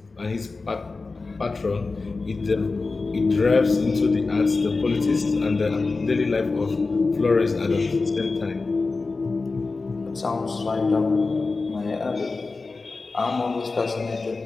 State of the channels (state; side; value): quieter; right; 3.9 dB